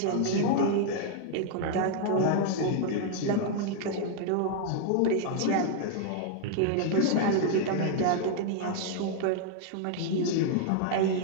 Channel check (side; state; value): both; different; correlation 0.00